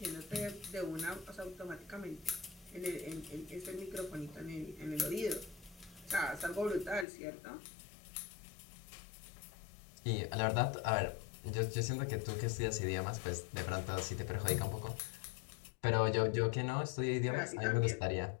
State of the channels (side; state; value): right; drops out; at 7.1 s